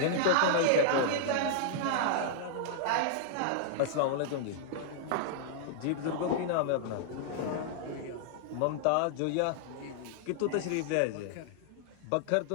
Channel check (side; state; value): both; different; correlation -0.01